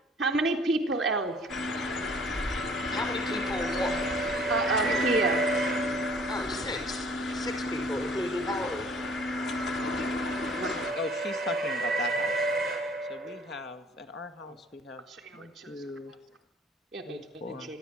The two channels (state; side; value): normal; both; correlation 0.55